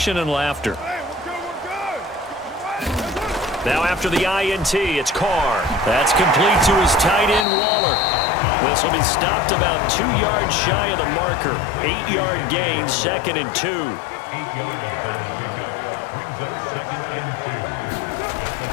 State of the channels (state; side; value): drops out; right; at 7.5 s